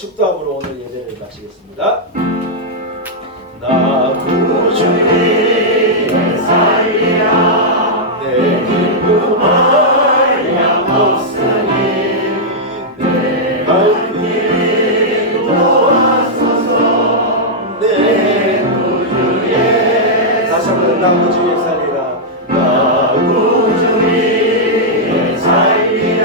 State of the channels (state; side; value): normal; both; correlation -0.07